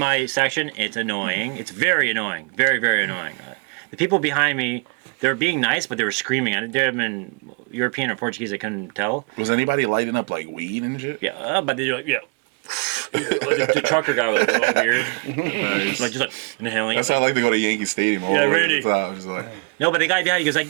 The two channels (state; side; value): quieter; left; 33.4 dB